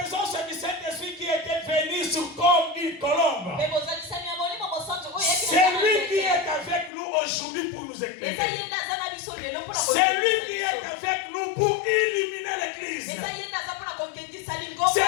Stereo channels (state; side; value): drops out; right; at 6.9 s